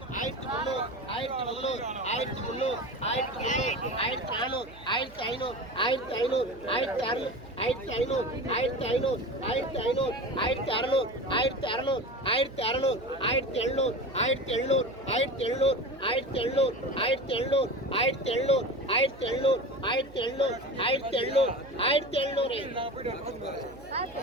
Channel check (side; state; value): right; noise; hum, 21 dB below the sound